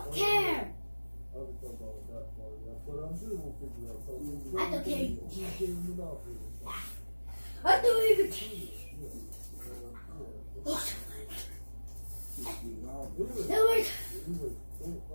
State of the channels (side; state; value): both; inverted; correlation -1.00